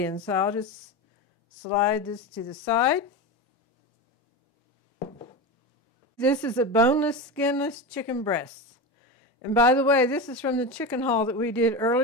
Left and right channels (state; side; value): normal; both; correlation 0.22